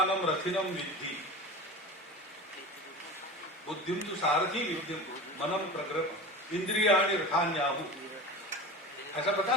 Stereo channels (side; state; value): both; normal; correlation 0.31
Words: रथिनम विद्धि बुद्धिम तु सारथी विद्युम मनम प्रग्रह इंद्रियाणि रथान्याहु। ऐसा पता